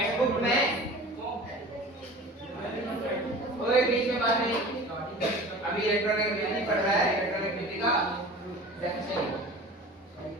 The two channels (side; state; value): both; normal; correlation 0.39